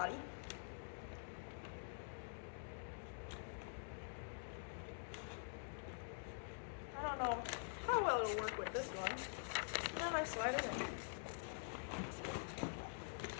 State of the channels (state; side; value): silent; right; digital silence